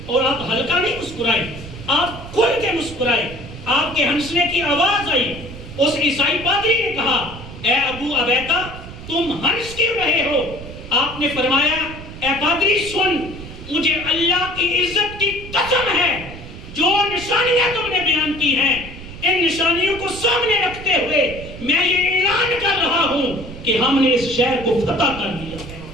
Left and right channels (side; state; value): right; noise; rumble, 13 dB below the sound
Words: اور آپ ہلکا نہیں مسکرائے، آپ کھل کے مسکرائے، آپ کے ہنسنے کی آواز آئی۔ اس عیسائی پادری نے کہا، اے ابو عبیدہ، تم ہنس کیوں رہے ہو؟ آپ نے فرمایا، اے پادری سن، مجھے اللہ کی عزت کی قسم قسم ہے جو نشانیاں تم نے بیان کی ہیں ان نشانیوں کو سامنے رکھتے ہوئے میں یہ اعلان کر رہا ہوں کہ ہم نے اس شہر کو فتح کر لیا ہے۔